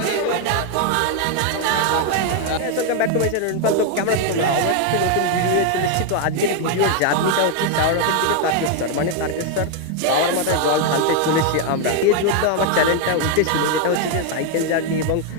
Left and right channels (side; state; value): both; different; correlation 0.01